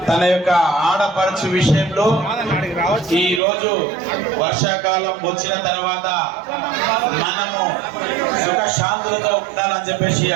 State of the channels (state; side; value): drops out; left; at 3.4 s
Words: తన యొక్క ఆడపడుచు విషయంలో ఈ రోజు వర్షాకాలం వచ్చిన తర్వాత మనము సుఖ శాంతులతో ఉండాలని చెప్పేసి